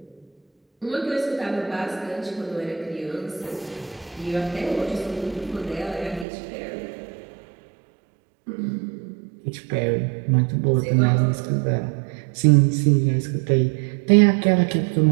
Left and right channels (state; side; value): drops out; left; at 6.2 s